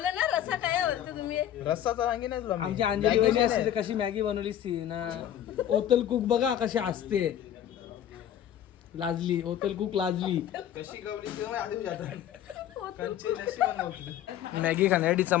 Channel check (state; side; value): quieter; right; 10.9 dB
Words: ना रसा काय बोलतो तुम्ही रस्साचा वांगी नाही तुला आमची अंजली वहिनी असते तर कशी मॅगी बनवली ती ना ओतल कुक बघा कशी असते लाजली होतल कुक लाजली. कशी गवली तेव्हा आधी जातात कंचे नशी बनवते. मॅगी खाण्यासाठी